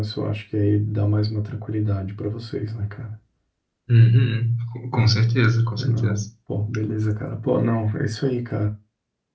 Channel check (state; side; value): identical; both; correlation 1.00